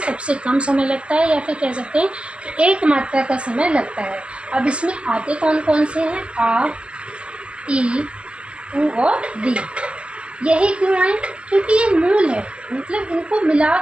या फिर कह सकते हैं कि एक मात्रा का समय लगता है। अब इसमें आते कौन कौन से हैं? आ, ई, उ और री। यही क्यों आए? क्योंकि ये मूल है, मतलब इनको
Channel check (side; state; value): left; late; 0.058 ms